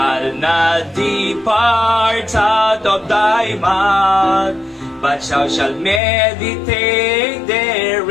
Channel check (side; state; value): right; drops out; at 6.0 s